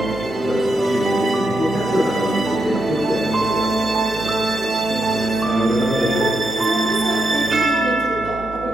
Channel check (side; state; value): both; normal; correlation 0.82